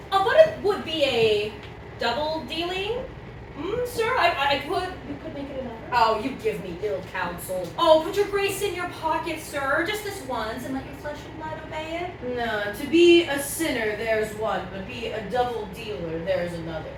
But it would be a double dealing, sir. We could make it another. Oh, you give me ill counsel. Oh, put your grace in your pocket, sir, just this once, and let your flesh and blood obey it. No, to be a sinner, there's one, but be a double dealer, there's another.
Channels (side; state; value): both; identical; correlation 1.00